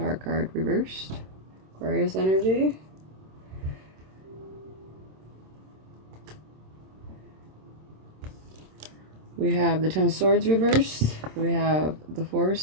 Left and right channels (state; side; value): late; left; 26 ms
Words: card reversed. Aquarius energy. We have the Ten of Swords reversed. We have the Four of